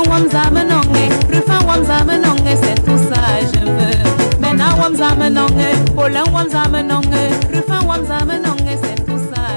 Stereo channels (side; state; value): both; inverted; correlation -1.00